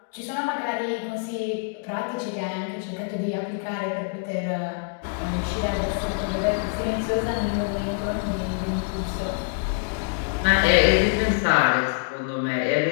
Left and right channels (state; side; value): quieter; right; 38.1 dB